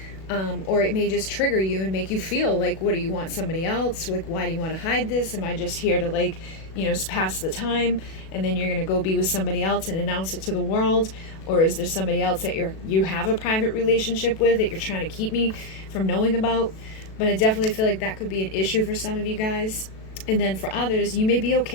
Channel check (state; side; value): late; right; 37 ms